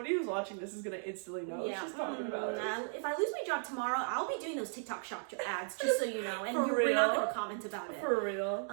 who's watching this is gonna instantly know what she's talking about. If I lose my job tomorrow, I'll be doing those TikTok shop ads, just so you know, and For we're not real? gonna comment about it. For real.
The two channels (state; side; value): silent; left; 54 dB below the other